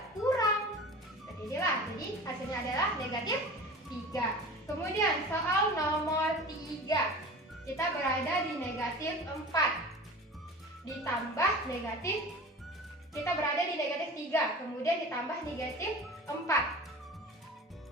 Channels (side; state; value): both; normal; correlation 0.37